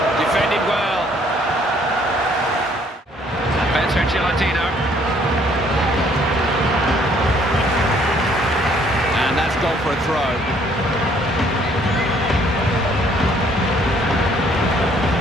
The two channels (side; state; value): both; normal; correlation 0.63